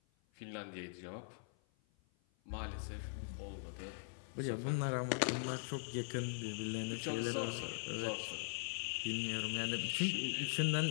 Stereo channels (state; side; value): silent; right; 50 dB below the other